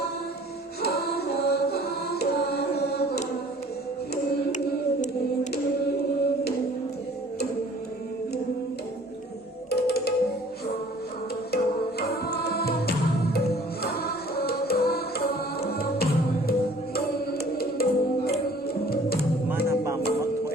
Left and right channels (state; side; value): normal; both; correlation 0.52